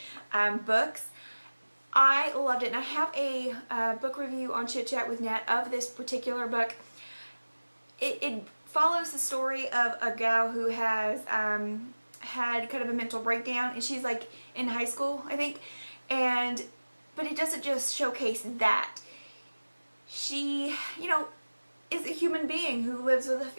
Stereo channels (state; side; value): inverted; both; correlation -1.00